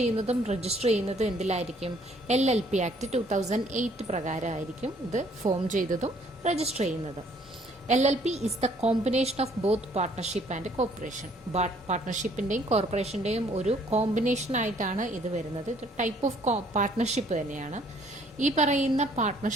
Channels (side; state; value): both; normal; correlation 0.62